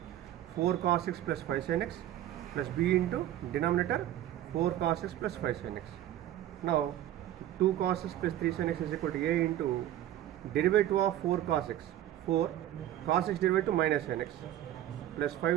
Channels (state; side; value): quieter; left; 12.6 dB